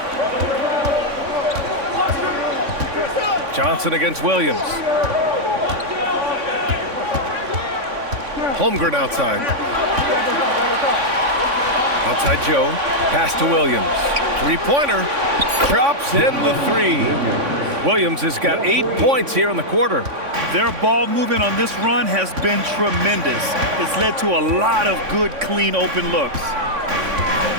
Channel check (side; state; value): left; late; 3.5 ms